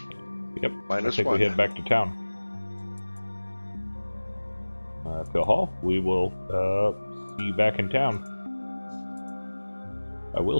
Yep. -1. I think we head back to town. Phil Hall, we will see you back in town. I will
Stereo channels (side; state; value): both; inverted; correlation -1.00